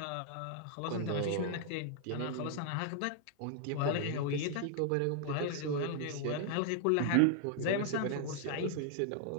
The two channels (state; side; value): different; both; correlation 0.00